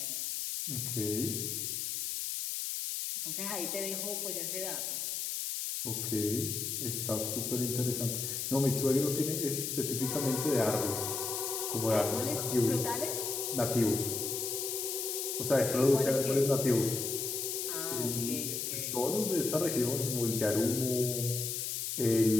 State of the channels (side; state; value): left; noise; hiss, 2 dB below the sound